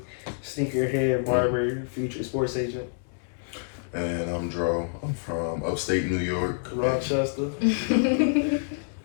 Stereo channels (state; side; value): silent; right; 60 dB below the other